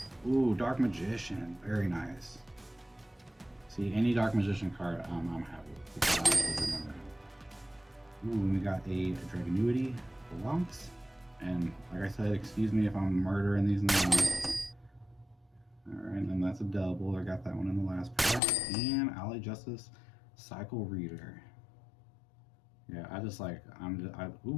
Ooh, Dark Magician. Very nice. See, any Dark Magician card I'm happy with because I actually remember him. Ooh, we got a Dragonuity, Blancs. And like I said, excuse me if I'm murdering these names. Alright, and then that's a double. I got that one in the last pack. And Alley Justice Cycle Reader. Yeah, I just like,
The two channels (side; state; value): right; drops out; at 18.4 s